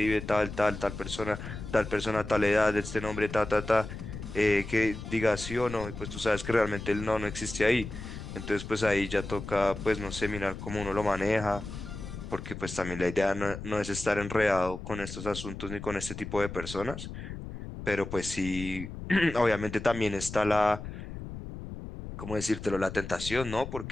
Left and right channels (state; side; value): noise; left; rumble, 9 dB below the sound